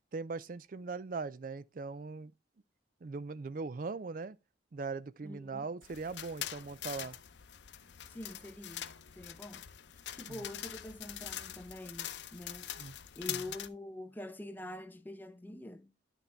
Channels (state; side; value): normal; both; correlation 0.24